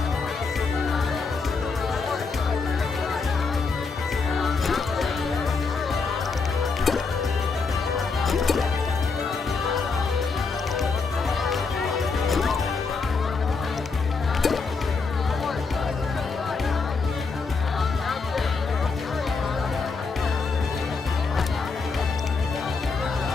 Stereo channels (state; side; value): quieter; right; 4.6 dB